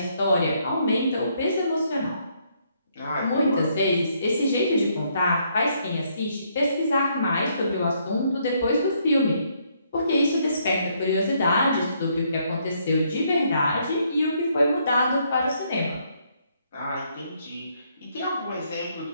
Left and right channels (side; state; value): both; inverted; correlation -0.71